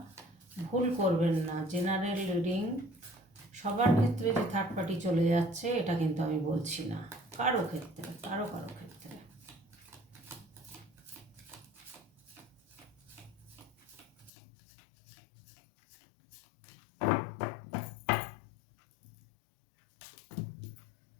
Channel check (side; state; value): right; drops out; at 14.3 s